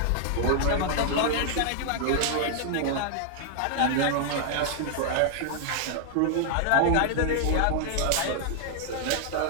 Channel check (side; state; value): both; different; correlation 0.00